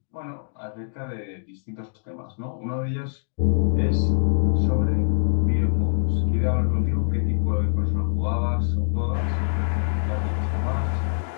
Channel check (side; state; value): right; silent; digital silence